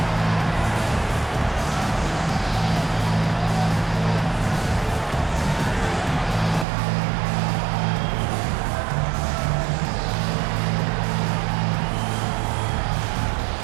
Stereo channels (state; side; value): drops out; left; at 6.7 s